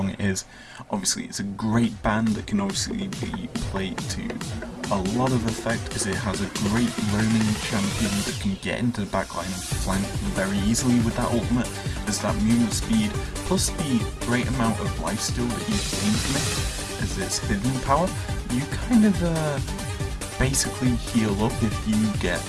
it is. Obviously it's a great ban that can obviously be played to a lot of effect, as it has a great roaming champion that can get into the backline and flank very easily with that ultimate, as that movement speed plus the great amount of lifesteal that you gain from it as its hidden power. You kind of basically heal up if you get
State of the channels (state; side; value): identical; both; correlation 1.00